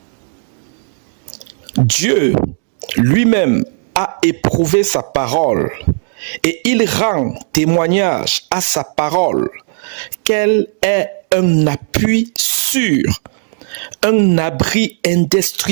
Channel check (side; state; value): left; silent; digital silence